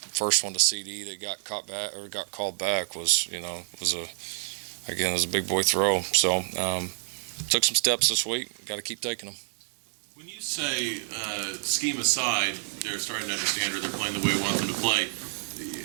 one to CD that got called back was a big boy throw. So took some steps this week. Got to keep taking them. When you say scheme aside, they're starting to understand or they're playing the way we want them to play,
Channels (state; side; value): silent; left; digital silence